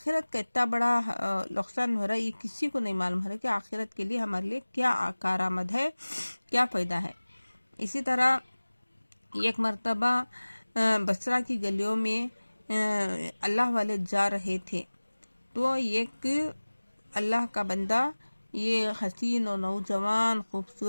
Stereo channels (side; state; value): both; inverted; correlation -1.00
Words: کا اتنا بڑا نقصان ہو رہا ہے، یہ کسی کو نہیں معلوم ہو رہا ہے کہ آخرت کے لیے ہمارے لیے کیا کارآمد ہے، کیا فائدہ ہے۔ اسی طرح ایک مرتبہ بصرہ کی گلیوں میں اللہ والے جا رہے تھے، تو ایک اللہ کا بندہ، یہ حسین و نوجوان